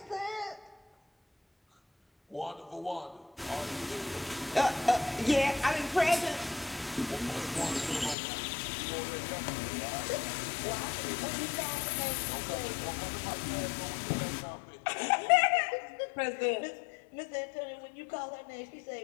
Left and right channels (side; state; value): right; drops out; at 8.2 s